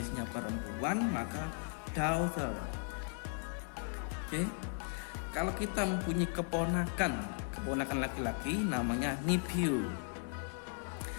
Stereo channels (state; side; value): silent; right; 53 dB below the other